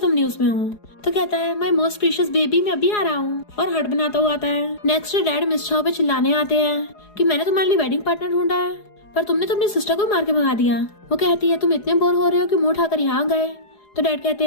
न्यूज में हो। तो कहता है माय मोस्ट प्रीशियस बेबी मैं अभी आ रहा हूँ, और हट बनाता हुआ आता है। नेक्स्ट डे डैड मिस छाओ पे चिल्लाने आते हैं कि मैंने तुम्हारे लिए वेडिंग पार्टनर ढूंढा है पर तुमने तो अपनी सिस्टर को मार के भगा दिया। वो कहती है तुम इतने बोर हो रहे हो कि मुंह उठाकर यहाँ गए। तो डैड कहते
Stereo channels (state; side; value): late; right; 4.8 ms